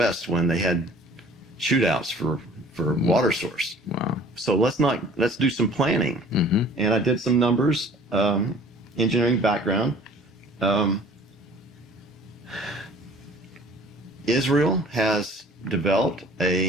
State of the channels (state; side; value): normal; both; correlation 0.50